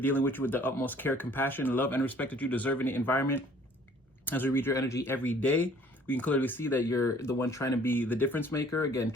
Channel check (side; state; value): both; normal; correlation 0.56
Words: with you with the utmost care, compassion, love, and respect that you deserve in the environment. As we read your energy every day, we can clearly see that you're the one trying to be the difference maker. Again,